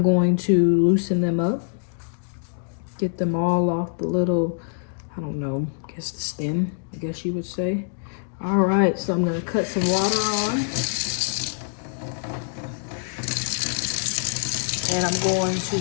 going to loosen them up. Get them all off the little, I don't know, I guess the stem, I guess you would say. All right, so I'm gonna cut some water on. And I'm going to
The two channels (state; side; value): silent; right; digital silence